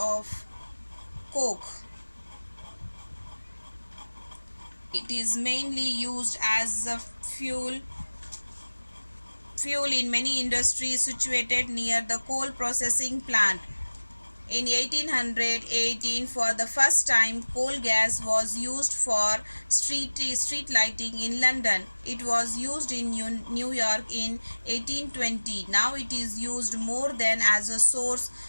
coke. It is mainly used as a fuel in many industries situated near the coal processing plant. In 1818, for the first time, coal gas was used for street lighting in London. It was used in New York in 1820. Now it is used more than as a source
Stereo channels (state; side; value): inverted; both; correlation -1.00